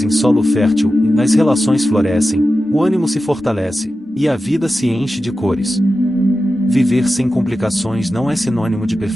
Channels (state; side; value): normal; both; correlation 0.93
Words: em solo fértil, as relações florescem, o ânimo se fortalece, e a vida se enche de cores. Viver sem complicações não é sinônimo de